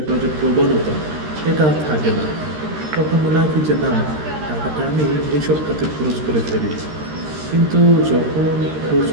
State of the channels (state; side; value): late; left; 13 ms